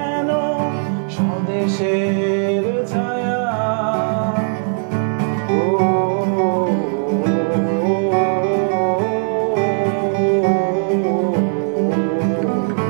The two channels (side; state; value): left; silent; 60 dB below the other